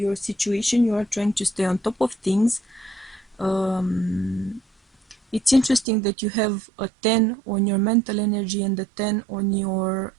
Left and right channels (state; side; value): drops out; left; at 5.9 s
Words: situation. You are trying to stay on top of things. It's interesting that you have a 10 on your mental energy and a 10 on your